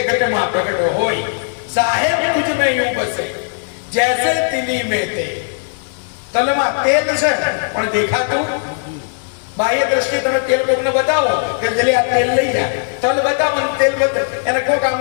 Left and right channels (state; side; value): silent; right; digital silence